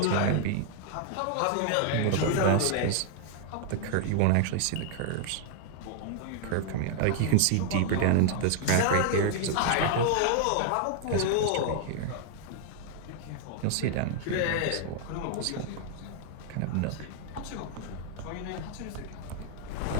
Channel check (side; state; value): both; different; correlation 0.00